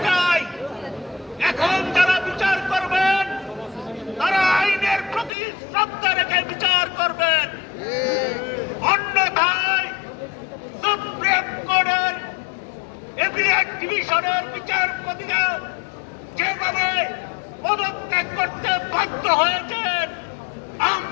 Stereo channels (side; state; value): right; drops out; at 5.3 s